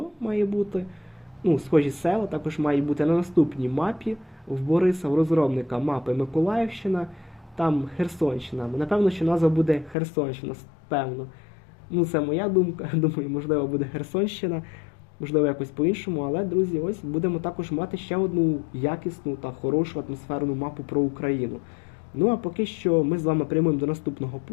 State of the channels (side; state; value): right; drops out; at 10.0 s